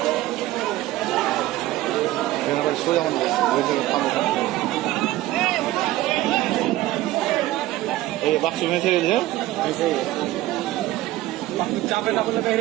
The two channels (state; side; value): quieter; left; 16.2 dB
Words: তো সোয়া হলো, ওই যে পাবো। এই বাক্স মেসে গেল, মেসে বাক্স চাপে না বলে